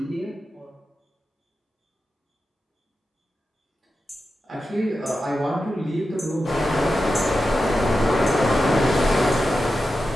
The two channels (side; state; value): both; normal; correlation 0.91